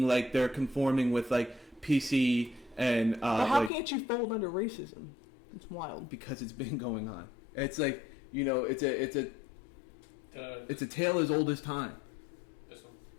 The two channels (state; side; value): drops out; right; at 3.7 s